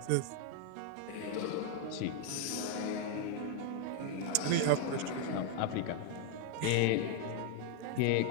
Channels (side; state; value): both; different; correlation 0.00